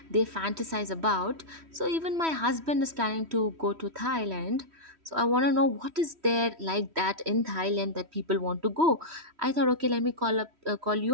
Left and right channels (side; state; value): left; late; 3.1 ms